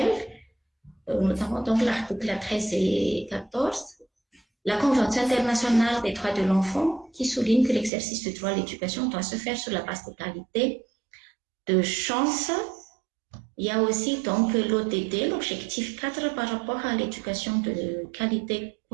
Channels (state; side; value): drops out; left; at 7.9 s